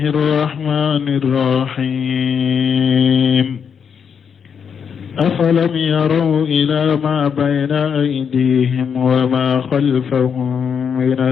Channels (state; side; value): quieter; right; 7.0 dB